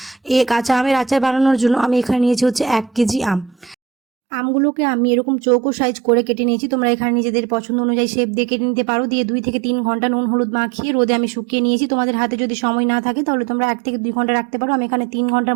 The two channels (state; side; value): drops out; left; at 3.8 s